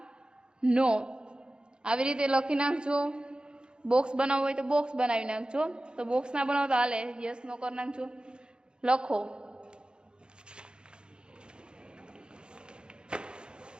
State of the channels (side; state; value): left; late; 0.050 ms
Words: નો આવી રીતે લખી નાખજો। બોક્સ બનાવવું હોય તો બોક્સ બનાવી નાખજો। તો બોક્સ ના બનાવો તો હાલે, યસ નો કરી નાખજો। લખો